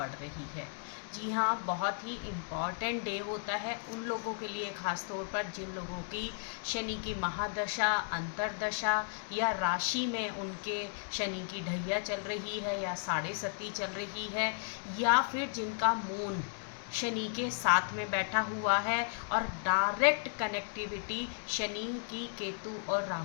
रही है। जी हाँ, बहुत ही इम्पॉर्टेंट डे होता है उन लोगों के लिए, ख़ास तौर पर जिन लोगों की शनि की महादशा, अंतरदशा या राशि में उनके शनि की ढैया चल रही है या साढ़े सती चल रही है, या फिर जिनका मून शनि के साथ में बैठा हुआ है और डायरेक्ट कनेक्टिविटी शनि की केतु और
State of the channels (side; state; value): right; silent; digital silence